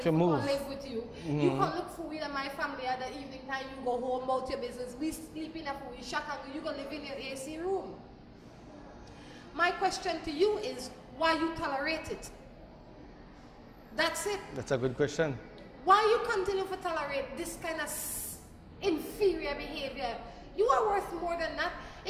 come live with you. You can look for me and my family at the evening time. You go home about your business. We sleep in a we shut and you go live in your AC room. My question to you is why you tolerate it? That's it. That's a good question. Why you continue to tolerate this kind of inferior behavior? You are worth more than that.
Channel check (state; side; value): identical; both; correlation 1.00